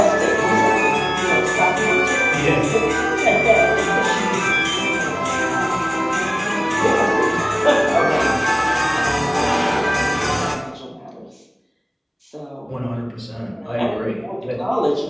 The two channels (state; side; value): identical; both; correlation 1.00